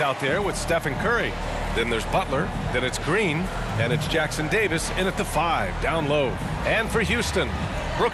there with Stephen Curry. Then there's Butler, then it's Green, and it's Jackson Davis in at the 5, down low. And for Houston,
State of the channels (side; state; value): both; identical; correlation 1.00